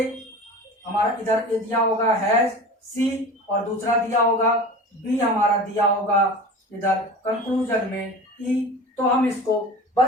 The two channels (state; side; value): normal; both; correlation 0.35